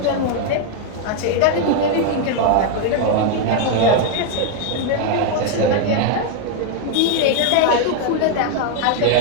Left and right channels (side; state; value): both; different; correlation 0.01